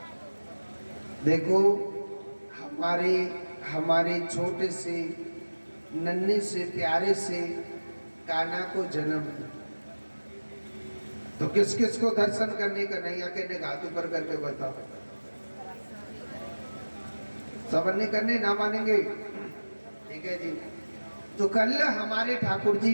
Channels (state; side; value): inverted; both; correlation -1.00